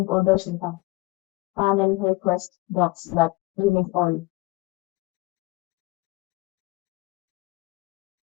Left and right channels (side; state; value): right; quieter; 22.9 dB